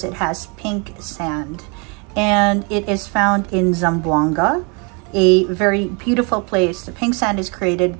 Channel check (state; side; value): quieter; left; 32.8 dB